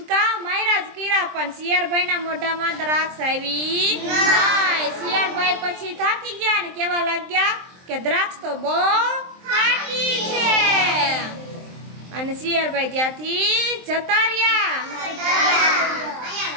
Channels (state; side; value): late; left; 23 ms